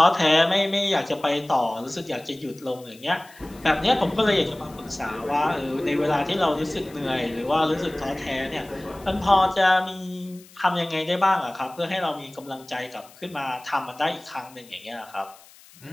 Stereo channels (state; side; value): noise; left; hiss, 24 dB below the sound